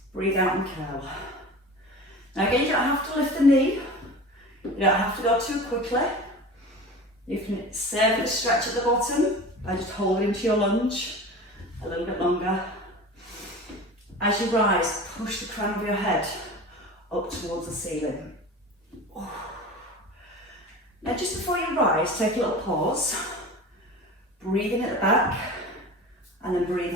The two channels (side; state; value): both; normal; correlation 0.35